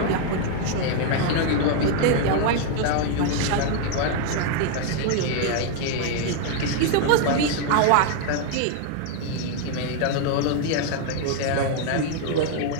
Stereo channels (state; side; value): different; both; correlation 0.00